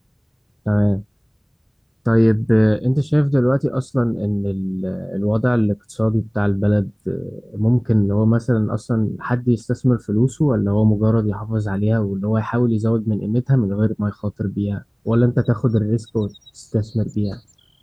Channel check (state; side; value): identical; both; correlation 1.00